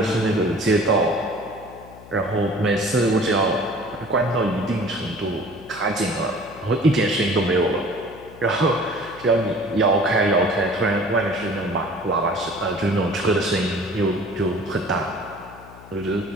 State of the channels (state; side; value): noise; left; hum, 19 dB below the sound